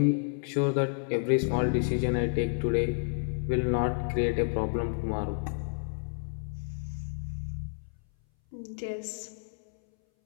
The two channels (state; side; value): silent; right; 58 dB below the other